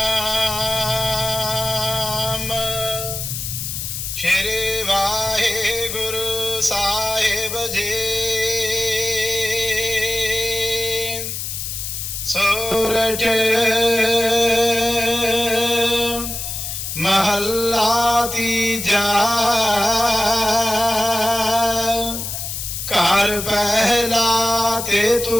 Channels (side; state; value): left; noise; hiss, 5 dB below the sound